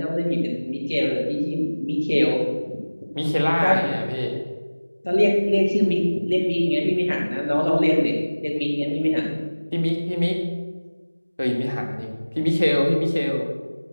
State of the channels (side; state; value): both; inverted; correlation -1.00